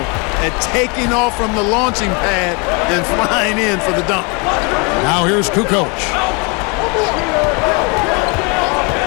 at taking off from the launching pad and flying in for the dunk. Now here's Kukoc.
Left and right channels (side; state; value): right; quieter; 31.7 dB